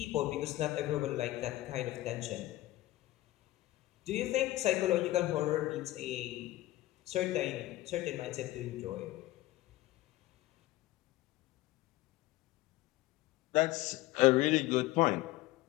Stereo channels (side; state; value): right; quieter; 17.1 dB